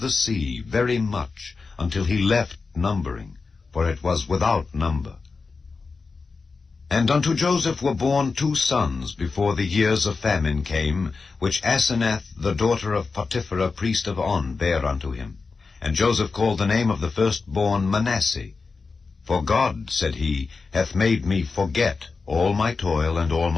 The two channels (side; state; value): right; quieter; 4.4 dB